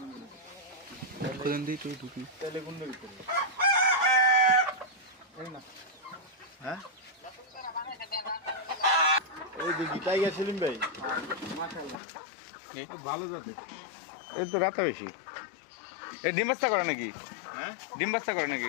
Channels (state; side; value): drops out; right; at 12.0 s